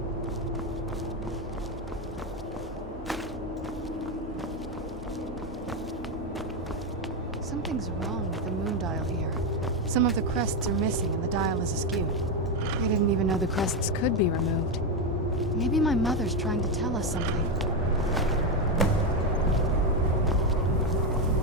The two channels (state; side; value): normal; both; correlation 0.08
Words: Some of the crests are missing and the dial is askew. I didn't even know the crests could be removed. Maybe my mother's trying to tell us something.